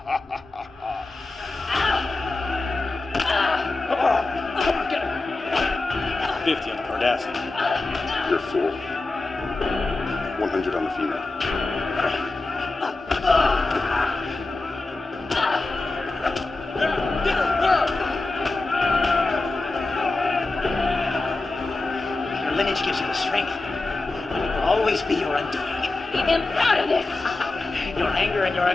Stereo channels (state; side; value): quieter; right; 3.2 dB